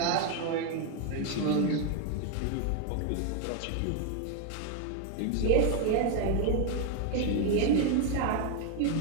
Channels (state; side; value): different; both; correlation 0.01